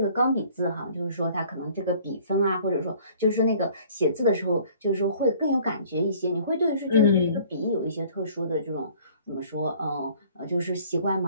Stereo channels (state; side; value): inverted; both; correlation -0.54